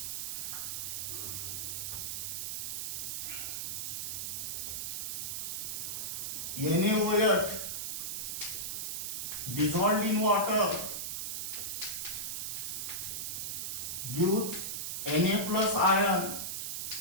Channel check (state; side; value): noise; right; hiss, 2 dB below the sound